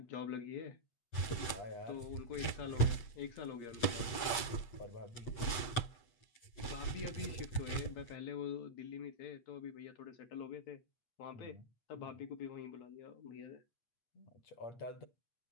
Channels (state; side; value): late; right; 8.5 ms